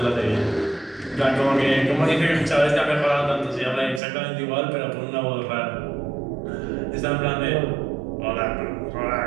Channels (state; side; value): drops out; left; at 4.0 s